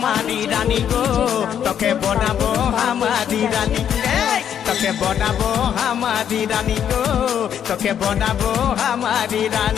রানী গো তোকে বনাবো হামারি রানী তোকে বনাবো হামারি রানী গো তোকে বনাবো হামারি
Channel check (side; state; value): right; quieter; 9.1 dB